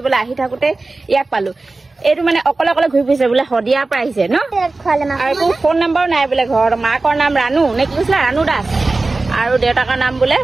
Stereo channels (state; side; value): quieter; left; 3.4 dB